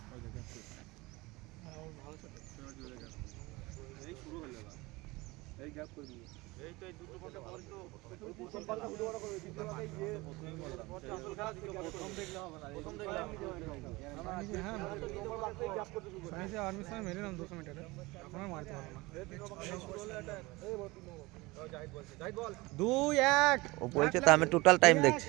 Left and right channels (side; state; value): left; quieter; 22.3 dB